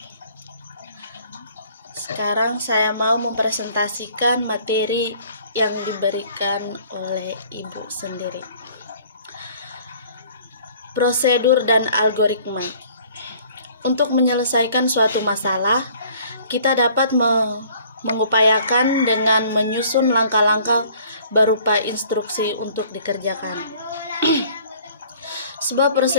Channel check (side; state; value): both; inverted; correlation -0.54